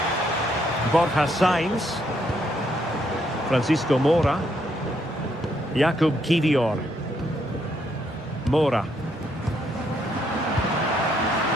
Borja Sainz. Francisco Mora. Jakub Kivior. Mora.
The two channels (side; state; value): both; normal; correlation 0.73